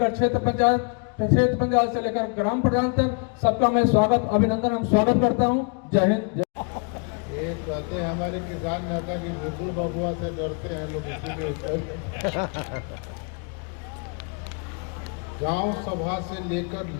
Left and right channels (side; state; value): right; quieter; 37.1 dB